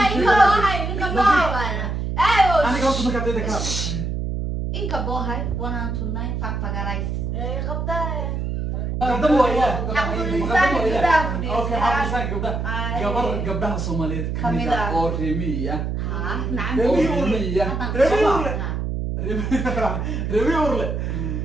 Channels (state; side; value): noise; right; hum, 2 dB below the sound